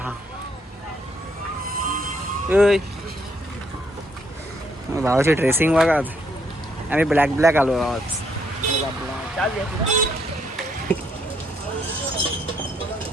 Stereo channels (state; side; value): normal; both; correlation 0.72